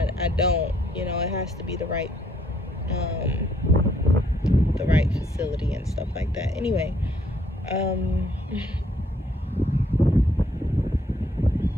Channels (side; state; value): both; normal; correlation 0.68